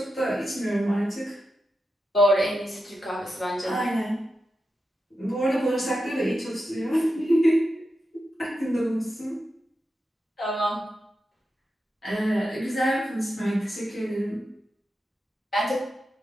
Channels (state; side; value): normal; both; correlation 0.89